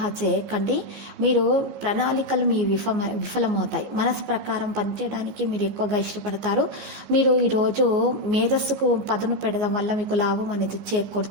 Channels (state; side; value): late; left; 14 ms